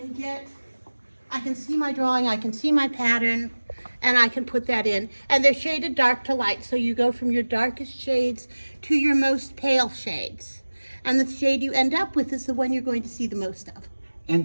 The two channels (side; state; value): both; inverted; correlation -1.00